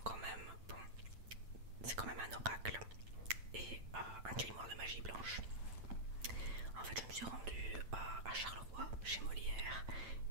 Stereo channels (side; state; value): left; late; 8.9 ms